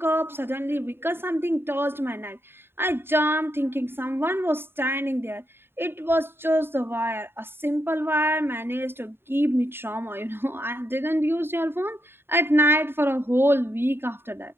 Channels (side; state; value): left; late; 0.11 ms